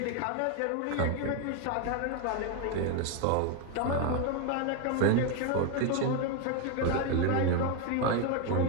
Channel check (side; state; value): both; different; correlation 0.01